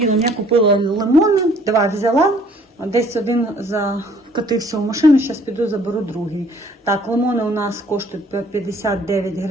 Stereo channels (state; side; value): normal; both; correlation 0.58